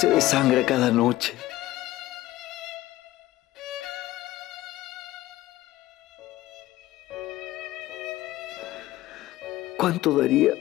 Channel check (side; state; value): right; quieter; 16.2 dB